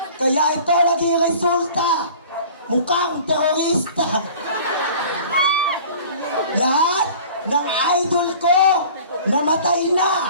Kaya ito naging resulta, mukhang terorista. Lahat ng idol ko namatay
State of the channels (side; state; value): both; inverted; correlation -0.45